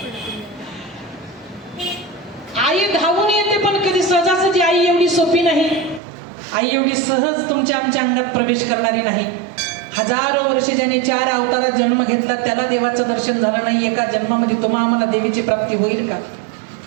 आई धावून येते पण कधी सहजासहजी आई एवढी सोपी नाही. आई एवढी सहज तुमच्या आमच्या अंगात प्रवेश करणारी नाही. हजारो वर्ष ज्याने 4 अवतारात जन्म घेतला त्याला देवाचं दर्शन झालं नाही. एका जन्मामध्ये तुम्हा आम्हाला देवीची प्राप्ती होईल का?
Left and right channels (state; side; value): drops out; left; at 6.0 s